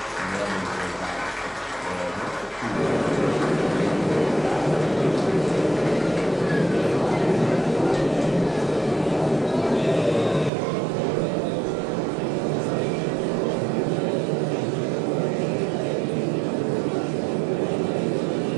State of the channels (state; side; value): drops out; left; at 10.5 s